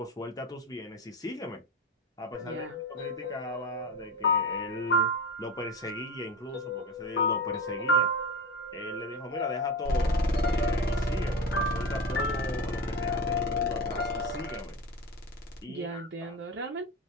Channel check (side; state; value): both; normal; correlation 0.23